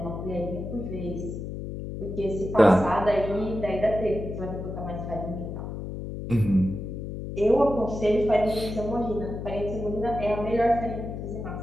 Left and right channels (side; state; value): left; noise; hum, 7 dB below the sound